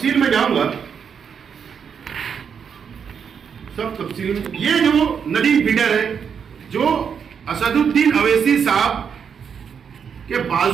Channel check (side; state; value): left; quieter; 7.0 dB